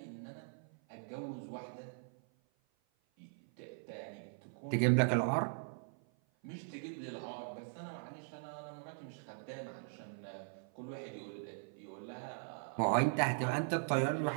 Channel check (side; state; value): left; silent; 51 dB below the other